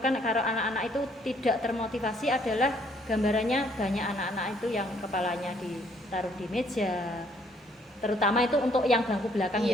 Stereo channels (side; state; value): both; normal; correlation 0.65